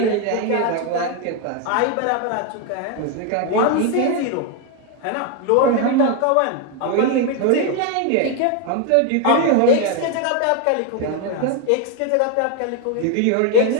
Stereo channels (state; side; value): different; both; correlation 0.01